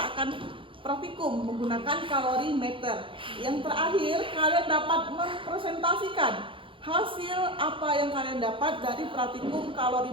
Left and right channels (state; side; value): late; left; 0.25 ms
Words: akan praktikum menggunakan kalorimeter. Yang terakhir kalian dapat mempresentasikan hasil apa yang kalian dapat dari praktikum